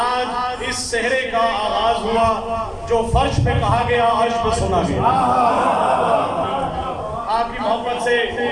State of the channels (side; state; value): both; identical; correlation 1.00